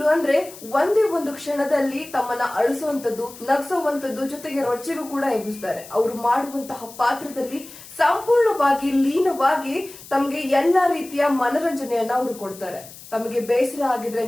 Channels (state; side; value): noise; left; hiss, 17 dB below the sound